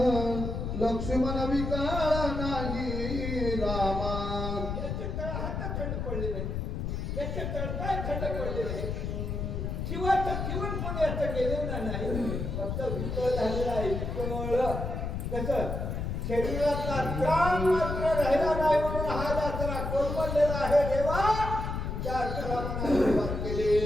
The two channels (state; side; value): noise; left; rumble, 3 dB below the sound